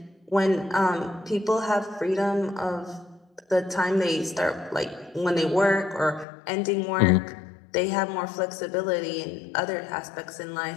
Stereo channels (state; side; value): drops out; right; at 6.2 s